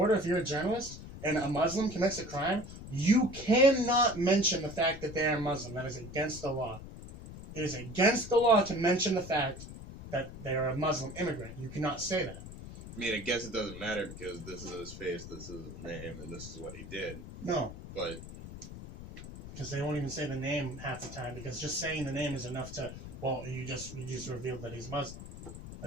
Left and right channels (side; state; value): left; noise; rumble, 12 dB below the sound